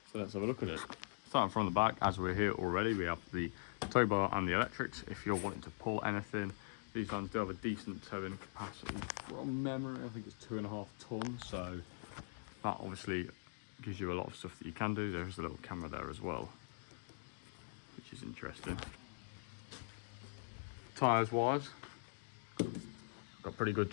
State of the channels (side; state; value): right; silent; digital silence